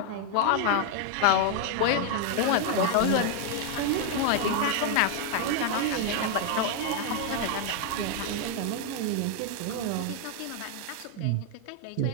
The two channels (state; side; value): different; both; correlation 0.00